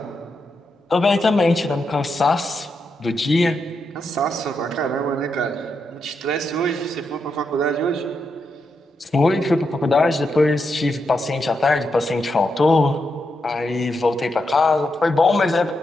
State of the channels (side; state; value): both; normal; correlation 0.83